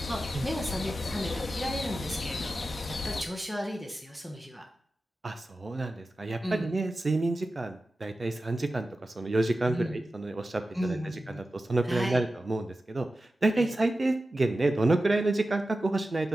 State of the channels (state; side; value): normal; both; correlation 0.93